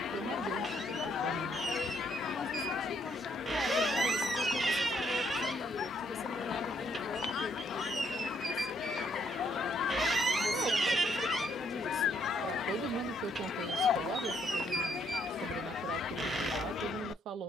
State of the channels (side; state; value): both; normal; correlation 0.71